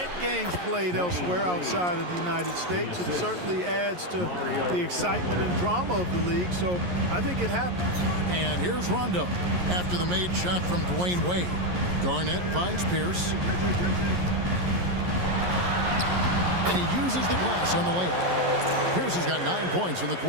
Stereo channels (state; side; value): late; left; 11 ms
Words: games played elsewhere outside of the United States. It certainly adds to the excitement and drama of the league, so I think it happens. And here's Rondo after the made shot from Dwayne Wade. Garnett finds Pierce. And he uses the glass on the layup. Pierce has got 9 points in the